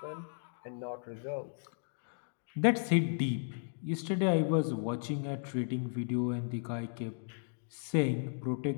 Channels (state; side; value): silent; right; digital silence